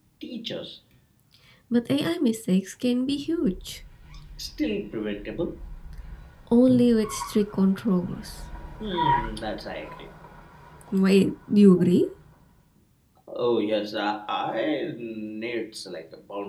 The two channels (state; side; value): identical; both; correlation 1.00